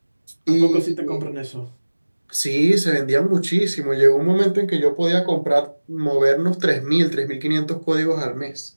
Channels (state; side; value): inverted; both; correlation -1.00